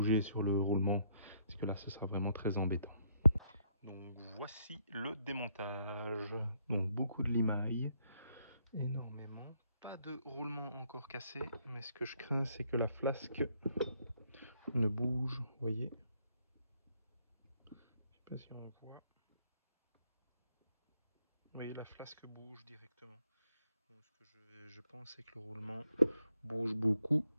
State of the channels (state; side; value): inverted; both; correlation -0.72